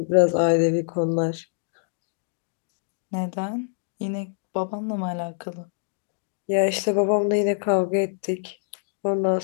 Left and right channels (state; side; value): silent; right; digital silence